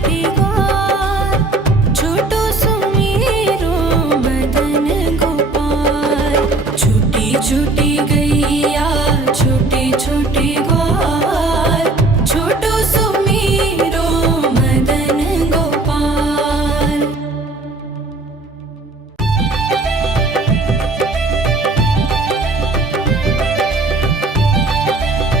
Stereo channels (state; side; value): quieter; left; 3.0 dB